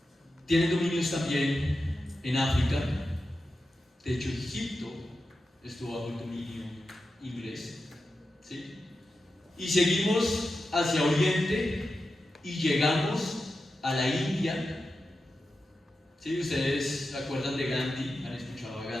tienen dominios también en África. De hecho, Egipto estuvo bajo el dominio inglés, ¿sí? Y seguimos hacia Oriente y llegamos a la India. ¿Sí? Ustedes se acuerdan de Gandhi, han escuchado a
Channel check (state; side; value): normal; both; correlation 0.91